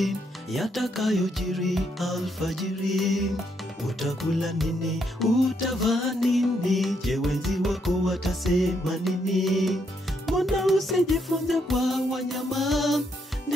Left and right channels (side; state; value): both; normal; correlation 0.75